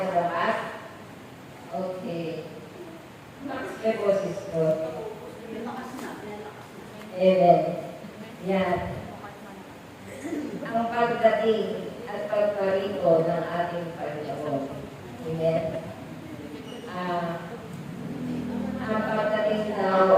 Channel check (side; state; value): both; identical; correlation 1.00